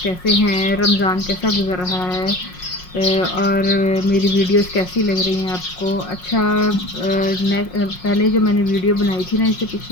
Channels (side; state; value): right; late; 5.5 ms